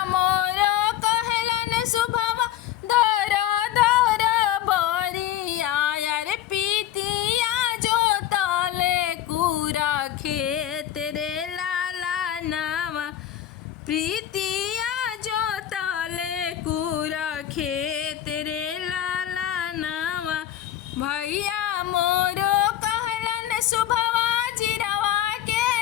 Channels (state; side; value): quieter; right; 11.6 dB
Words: मोर कहलन सुभवा दर दर बरिया यारे पीतिया जो तले कुरा खेत रे लाला नामा प्रीतिया जो तले कुरा खेत रे लाला नामा भैया मोरो कहलन सुभवा जिरवा के